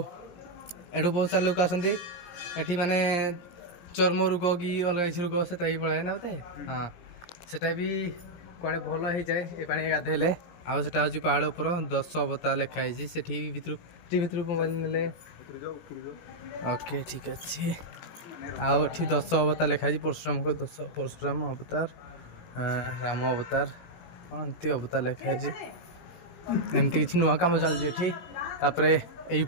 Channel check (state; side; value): late; right; 17 ms